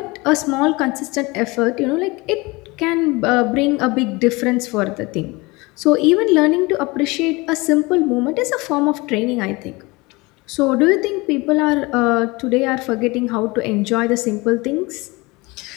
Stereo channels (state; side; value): quieter; right; 24.0 dB